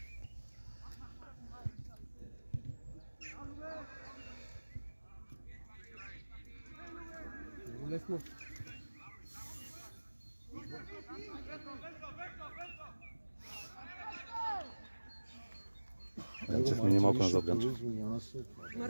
Много лесно. Янчев мини малко назад, Ганчев.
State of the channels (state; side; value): inverted; both; correlation -1.00